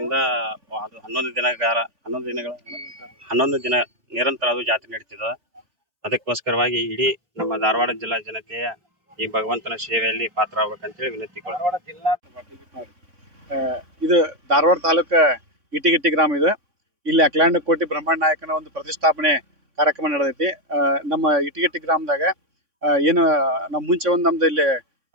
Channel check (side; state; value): left; late; 3.6 ms